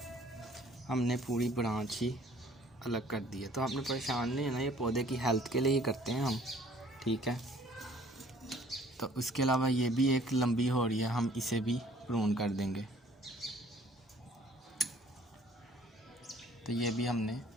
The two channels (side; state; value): both; normal; correlation 0.56